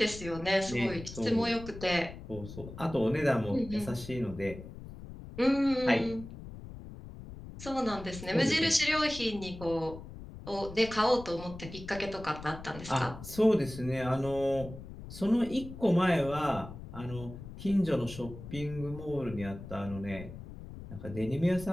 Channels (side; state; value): left; noise; rumble, 13 dB below the sound